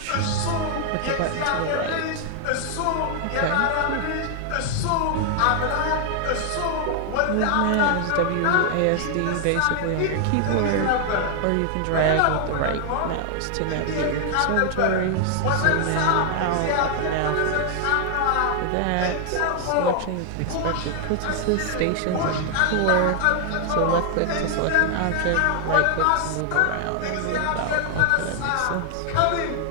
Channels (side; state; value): both; different; correlation 0.00